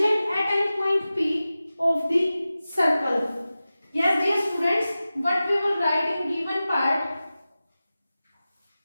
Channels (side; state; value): both; inverted; correlation -0.95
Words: at any point P of the circle. Yes, dear students, what we will write in given part?